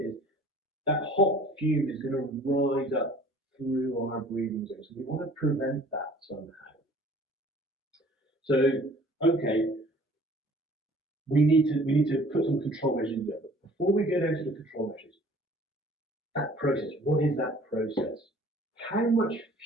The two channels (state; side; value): normal; both; correlation 0.52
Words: is, that hot fume is going to rise up through our breathing zone. So we want to prevent that somehow. So, okay, we need to put some control measures in there. But before we get into the control measures, that process, what is that process? How much